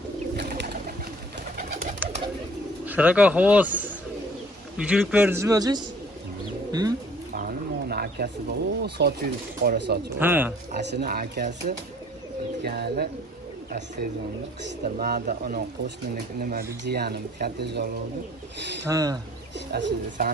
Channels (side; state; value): both; normal; correlation 0.54